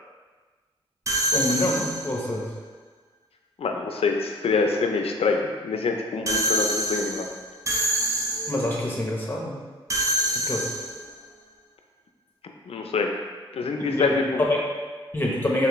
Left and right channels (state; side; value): normal; both; correlation 0.45